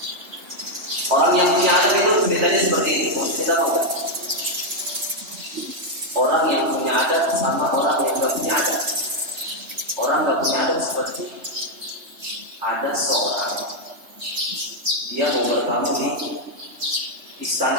Orang yang punya adab itu ceritanya seperti ini. Mau cerita apa? Orang yang punya adab sama orang yang gak punya adab. Orang gak punya adab seperti ada seorang, dia mau bertamu di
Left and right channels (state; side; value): late; left; 3.3 ms